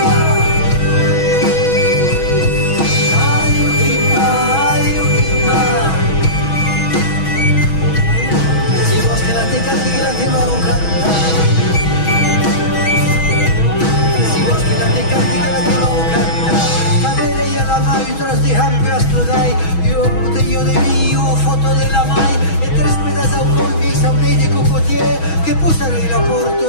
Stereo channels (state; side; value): late; right; 6.2 ms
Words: Io de mio, foto della mai e tres pedas autoi saunei de cocotier che pusserei la